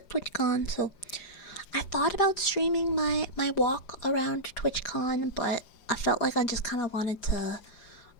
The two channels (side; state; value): right; late; 4.9 ms